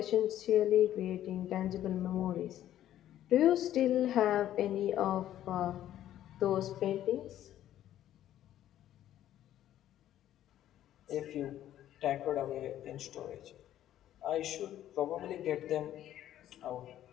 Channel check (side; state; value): right; quieter; 12.2 dB